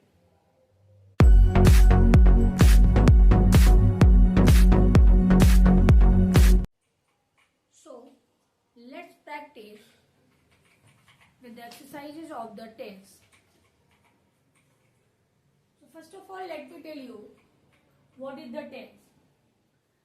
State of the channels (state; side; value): identical; both; correlation 1.00